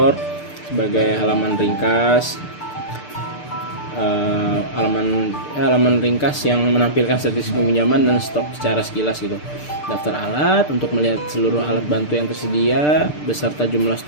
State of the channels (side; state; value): right; late; 6.7 ms